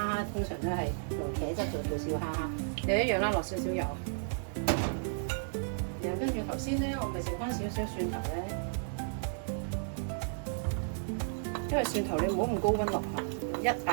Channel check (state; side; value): silent; left; digital silence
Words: 通常都係用茄汁做小蝦蝦，又一樣啦，落少少油。頭先咧，我咪剩翻少少蒜頭咧，因為蒜頭你唔好咁高溫落去，一